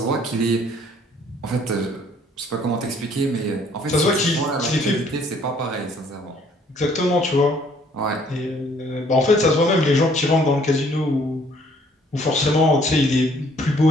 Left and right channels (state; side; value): normal; both; correlation 0.61